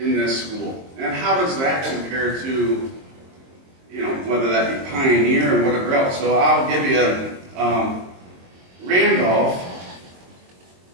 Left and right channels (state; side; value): late; left; 22 ms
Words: this school. And how does that compare to, whether that be Pioneer or whatever else. So I'll give you, Randolph